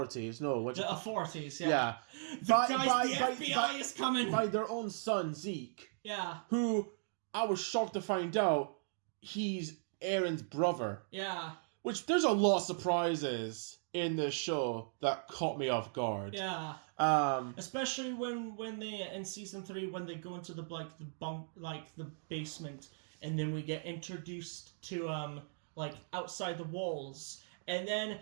No, the authorities. Yeah. Yeah. The FBI is coming. By their own son Zeke. Yeah. Who I was shocked to find out he's Aaron's brother. Yeah. Which there's a lot of surprises in this show that caught me off guard. Yeah. Especially when they in season 3 when they go into the basement, and then we get introduced to outside the walls, and then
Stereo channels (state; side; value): silent; left; digital silence